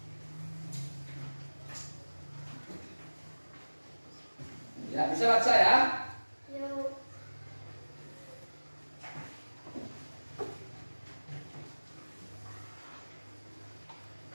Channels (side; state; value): both; inverted; correlation -1.00